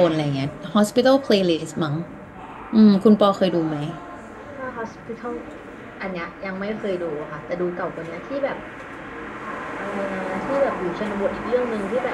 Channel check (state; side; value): identical; both; correlation 1.00